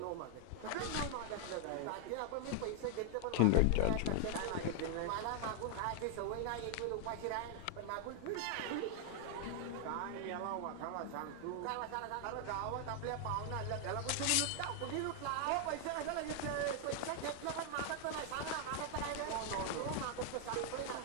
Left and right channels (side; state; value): both; different; correlation 0.00